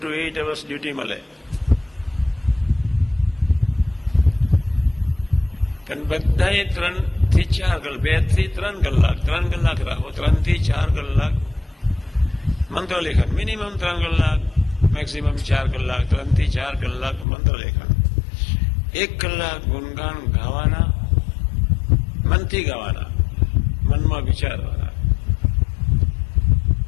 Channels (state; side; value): drops out; right; at 17.2 s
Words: to 8 hours ડ્યુટી મળે. પણ બધાએ 3 થી 4 કલાક, 2 થી 3 કલાક, 3 કલાક રાખો, 3 થી 4 કલાક મંત્રલેખન, મિનિમમ 3 કલાક, મેક્સિમમ 4 કલાક, 3 થી 4 કલાક મંત્રલેખન, 1 કલાક ગુણગાન ગાવાના, મનથી ગાવાના, મનમાં વિચારવાના,